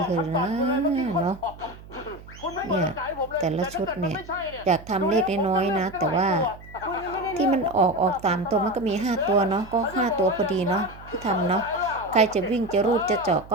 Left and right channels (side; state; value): right; noise; hum, 18 dB below the sound